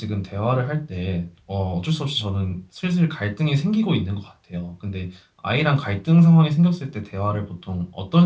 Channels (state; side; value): identical; both; correlation 1.00